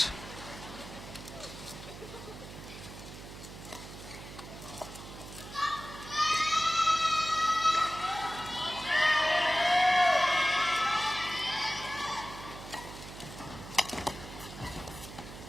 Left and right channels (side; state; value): right; noise; hum, 13 dB below the sound